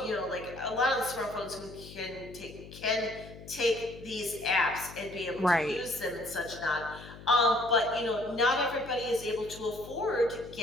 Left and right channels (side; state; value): left; noise; hum, 16 dB below the sound